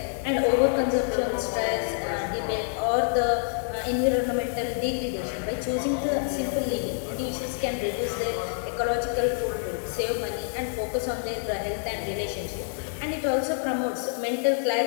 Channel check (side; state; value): right; silent; digital silence